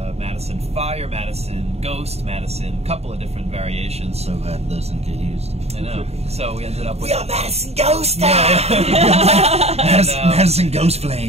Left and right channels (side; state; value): left; late; 0.30 ms